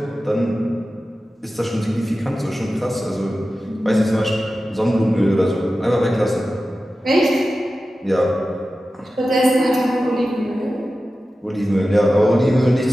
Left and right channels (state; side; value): normal; both; correlation 0.94